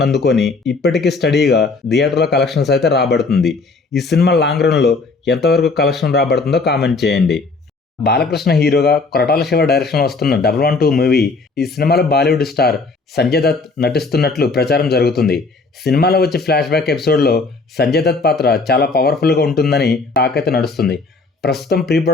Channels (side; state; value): right; quieter; 3.9 dB